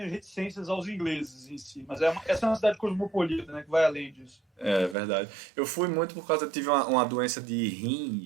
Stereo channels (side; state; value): left; drops out; at 5.0 s